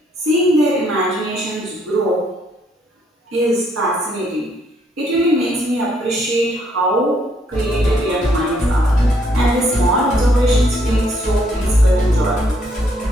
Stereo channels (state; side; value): normal; both; correlation 0.70